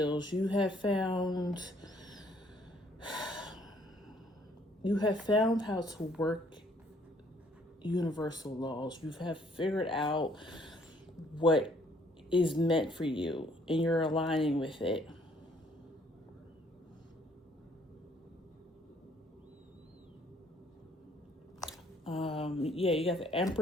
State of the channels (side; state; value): both; normal; correlation 0.63